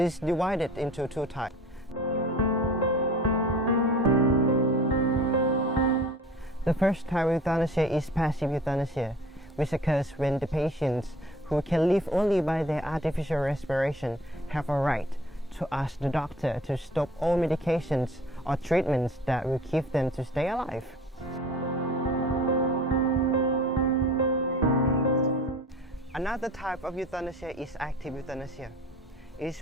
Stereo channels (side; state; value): both; normal; correlation 0.45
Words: divided into two types. The first type of euthanasia is passive euthanasia, which occurs when the patients who can live only by their artificial respiration have a right to ask the doctor to stop all medications or treatments that will keep them to stay alive. Another type of euthanasia is active euthanasia. It